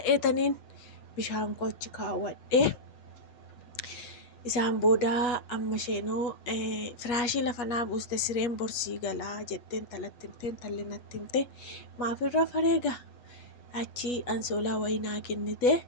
bishaan koo achi kaawwadhee. Isaan booda amma isheenoo firaashii lafa naa buuste sireen borsii galaa jetteen talatti himteen talli natti himte maafirra fareega achi ansoolaa wayii naa kennite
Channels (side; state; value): right; late; 8.4 ms